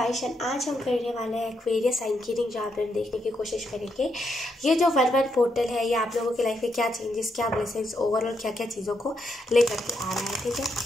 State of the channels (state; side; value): normal; both; correlation 0.80